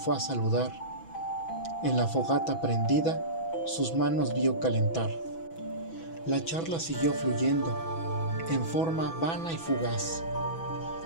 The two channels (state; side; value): late; right; 6.1 ms